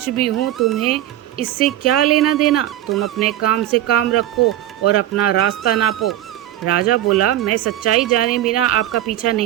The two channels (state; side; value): quieter; left; 13.2 dB